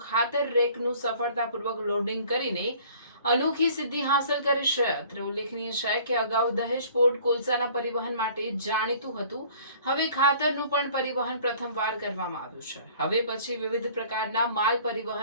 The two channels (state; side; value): inverted; both; correlation -0.52